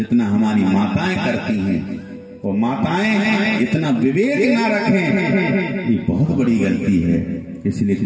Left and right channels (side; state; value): both; identical; correlation 1.00